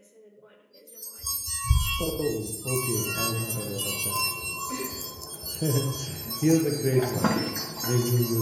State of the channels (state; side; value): identical; both; correlation 1.00